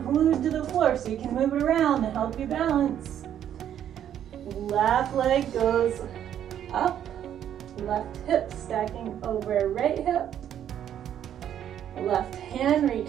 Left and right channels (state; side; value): quieter; left; 10.2 dB